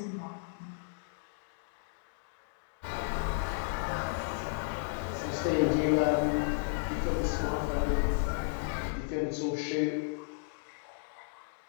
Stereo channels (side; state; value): right; silent; digital silence